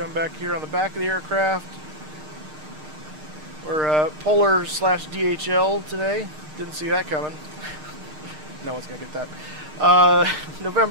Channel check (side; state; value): left; late; 6.5 ms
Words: back here on the back of the aircraft. We're Polar / DHL today. Didn't see that coming. No one's going to get that.